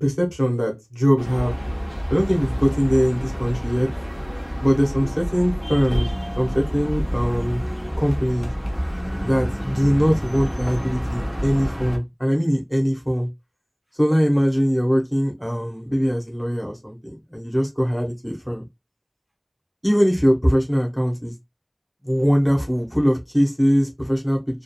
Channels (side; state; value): both; identical; correlation 1.00